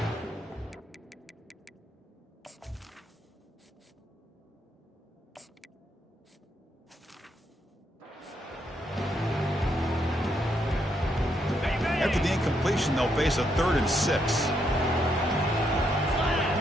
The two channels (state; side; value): normal; both; correlation 0.77